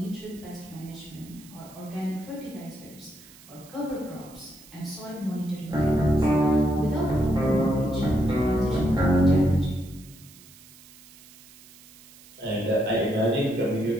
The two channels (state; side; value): noise; right; hiss, 22 dB below the sound